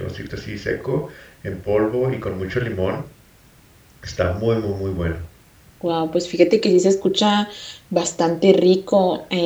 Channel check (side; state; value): both; identical; correlation 1.00